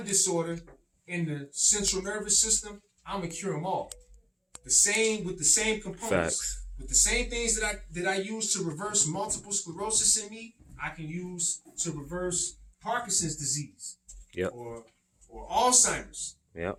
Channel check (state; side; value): identical; both; correlation 1.00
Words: disorder in the central nervous system, I'm gonna cure them all. With the same components. Facts. with the same things that I use to reverse multiple sclerosis in me, I can use to reverse Parkinson's disease. Yep. Or Alzheimer's. Yep.